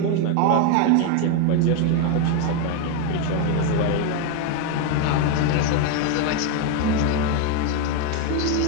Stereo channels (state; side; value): different; both; correlation 0.01